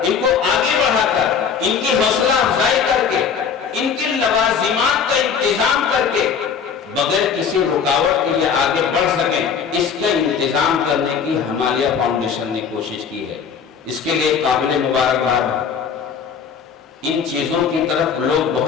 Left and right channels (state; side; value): quieter; right; 6.7 dB